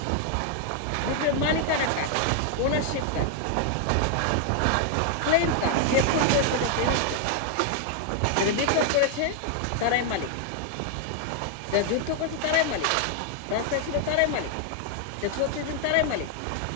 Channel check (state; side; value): different; both; correlation 0.00